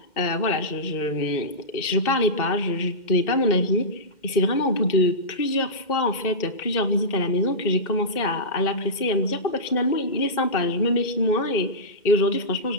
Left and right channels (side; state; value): right; late; 2.1 ms